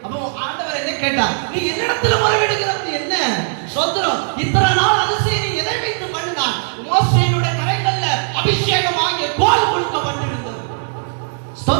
அப்போ ஆண்டவர் என்ன கேட்டார்? நீ என்னிடத்துல முறையிடுகிறது என்ன? சோதரம், இத்தனை நாள் அதிசயம் நீ எதை வைத்து பண்ணினார்? மோசேயுடைய கரங்கள்ல அபிஷேகமாகிய கோல் கொடுக்கப்பட்டிருந்தது.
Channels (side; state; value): left; silent; digital silence